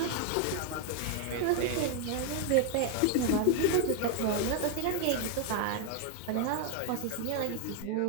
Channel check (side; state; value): both; different; correlation 0.01